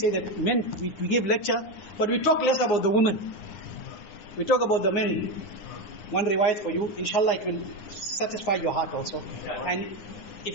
that men, we give lecture, but we talk less about the women. We talk about the men. One riwayat for you, inshallah it will satisfy your heart also. And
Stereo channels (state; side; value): late; right; 9.8 ms